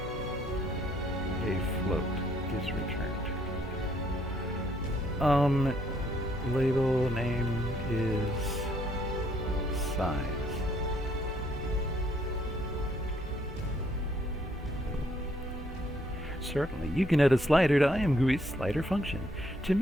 a float is returned. Label name is size. Certainly, you can add a slider to ImGUI's slider function. To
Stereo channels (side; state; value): both; normal; correlation 0.68